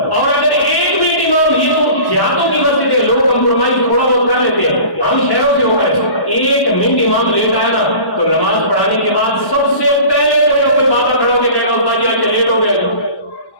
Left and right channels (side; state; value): right; late; 1.1 ms